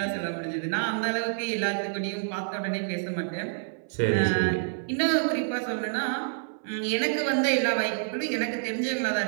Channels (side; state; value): left; silent; 58 dB below the other